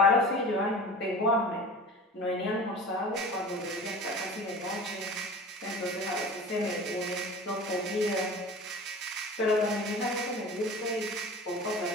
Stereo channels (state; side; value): normal; both; correlation 0.37